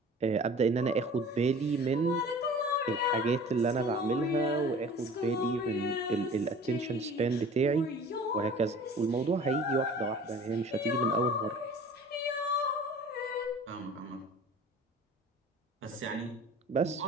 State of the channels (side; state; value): both; normal; correlation 0.44